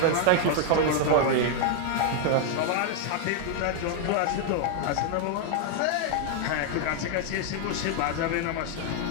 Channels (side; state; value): both; different; correlation 0.00